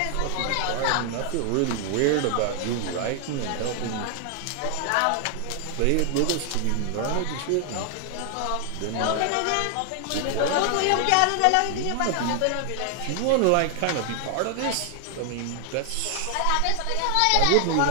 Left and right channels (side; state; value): both; different; correlation 0.00